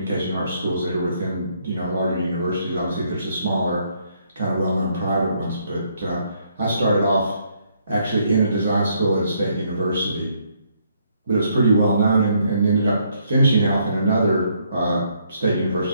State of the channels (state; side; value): inverted; both; correlation -0.71